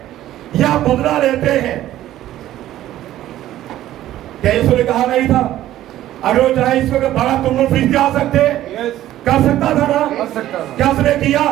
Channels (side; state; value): left; quieter; 13.5 dB